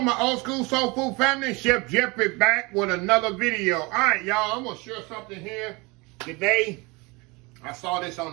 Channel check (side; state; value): left; quieter; 26.2 dB